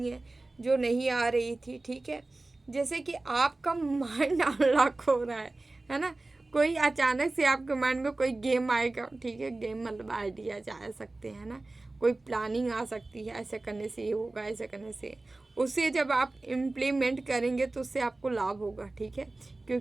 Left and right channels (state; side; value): quieter; left; 3.1 dB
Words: हैं जो नहीं आ रही थी, ठीक है। जैसे कि आपका माइंड अनलॉक हो रहा है ना। कोई अचानक से आपके माइंड में कोई गेम आएगा, ठीक है। गेम मतलब आइडिया जा सकते हैं ना, कोई प्लानिंग आ सकती है, ऐसे करने से ये होगा, ऐसे करने से, उसे जब आप इम्प्लीमेंट करेंगे तो उससे आपको लाभ होगा, ठीक है।